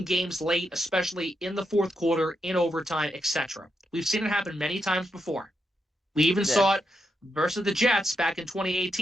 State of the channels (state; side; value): normal; both; correlation 0.83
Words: games late, especially in the fourth quarter, in overtime, etc. We've seen it happen many times before. We even saw it versus the Jets back in